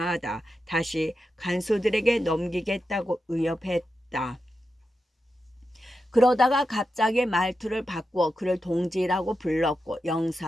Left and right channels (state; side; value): normal; both; correlation 0.89